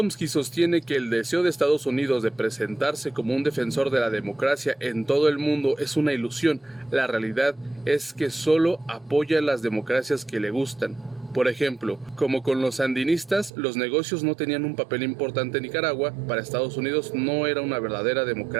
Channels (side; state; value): left; drops out; at 13.5 s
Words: sostiene que el deseo de Estados Unidos de presentarse como un defensor de la democracia en todo el mundo es una ilusión. La realidad es que solo apoya las democracias que le gustan. Por ejemplo, como con los sandinistas, los negocios no tenían un papel importante en Nicaragua, para Estados Unidos no era una verdadera